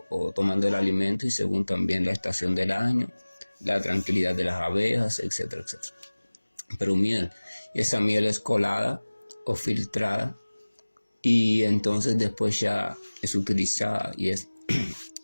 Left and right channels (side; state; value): both; inverted; correlation -1.00